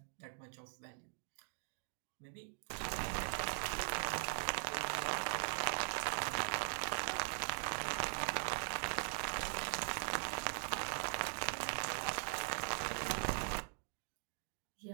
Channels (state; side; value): silent; left; digital silence